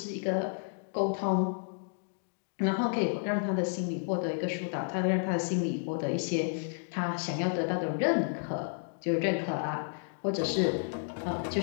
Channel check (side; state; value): right; silent; digital silence